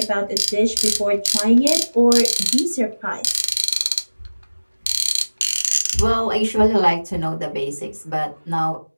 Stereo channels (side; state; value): both; inverted; correlation -1.00